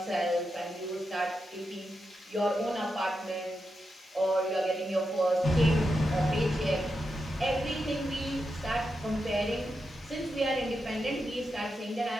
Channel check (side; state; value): both; normal; correlation 0.87